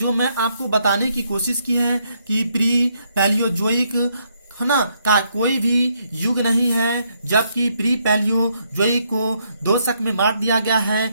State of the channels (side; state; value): both; inverted; correlation -0.74